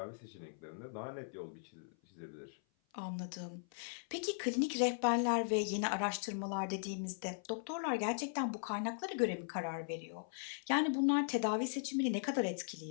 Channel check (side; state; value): right; silent; 52 dB below the other